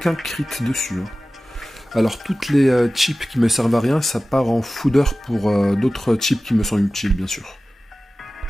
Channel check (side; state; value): both; normal; correlation 0.96